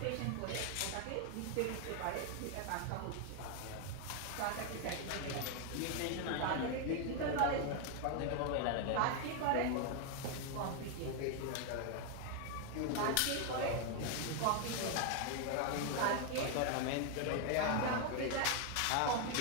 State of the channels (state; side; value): different; both; correlation 0.00